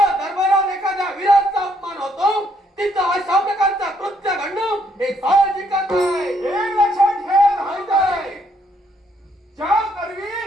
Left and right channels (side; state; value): both; normal; correlation 0.70